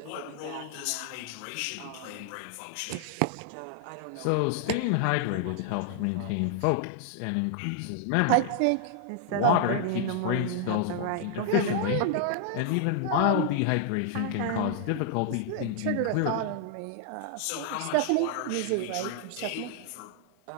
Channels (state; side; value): different; both; correlation 0.00